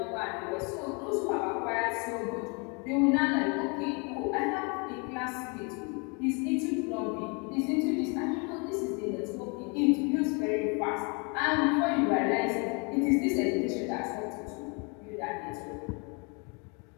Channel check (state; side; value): quieter; right; 33.3 dB